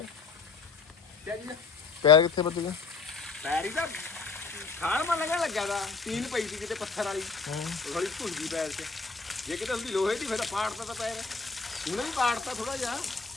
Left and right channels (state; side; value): quieter; right; 4.6 dB